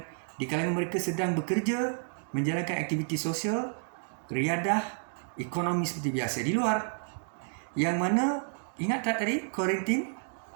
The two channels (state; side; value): silent; left; digital silence